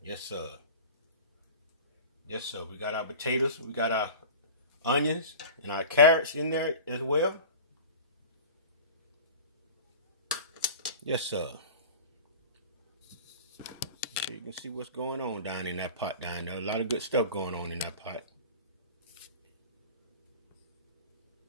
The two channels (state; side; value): inverted; both; correlation -0.36